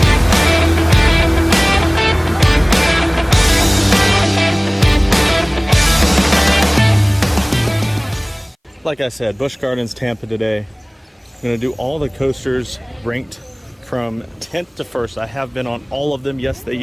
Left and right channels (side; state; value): both; identical; correlation 1.00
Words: Like I said, Busch Gardens Tampa today. I'm going to do all the coasters ranked from 10th to 1st. I have been on all of them. Yes, they